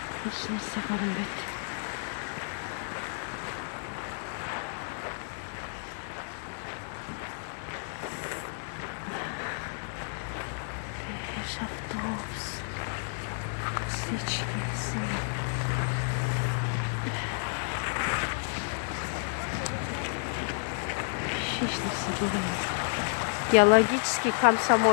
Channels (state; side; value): silent; right; digital silence